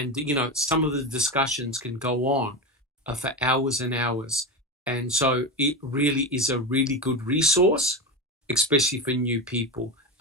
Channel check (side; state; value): both; normal; correlation 0.19